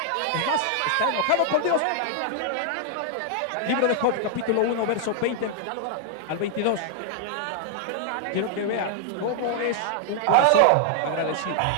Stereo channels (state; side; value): different; both; correlation -0.01